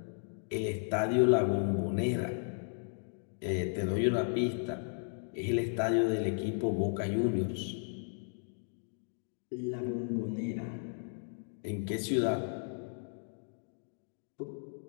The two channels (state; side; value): silent; right; digital silence